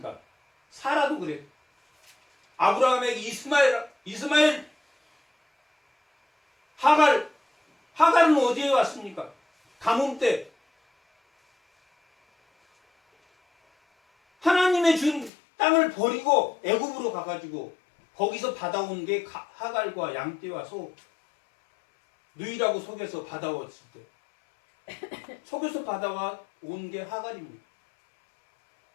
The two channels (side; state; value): right; drops out; at 15.3 s